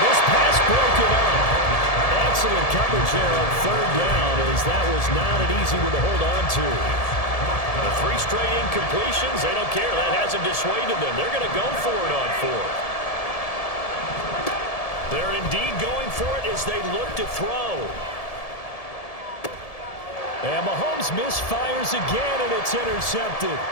this pass broken up. Excellent coverage there on 3rd down, as that was not an easy one to hold on to. The 3 straight incompletions, they don't care. That hasn't dissuaded them. They're going to go for it on 4th. They're indeed going for it as they look to throw. And Mahomes misfires again, and it's intercepted.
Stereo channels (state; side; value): late; right; 1.7 ms